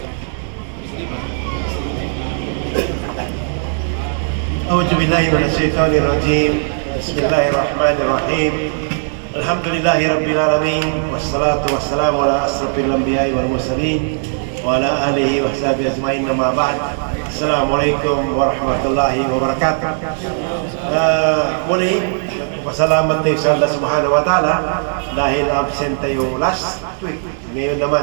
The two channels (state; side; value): silent; left; digital silence